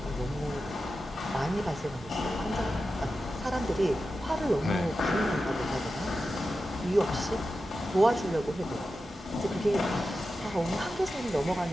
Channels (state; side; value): normal; both; correlation 0.92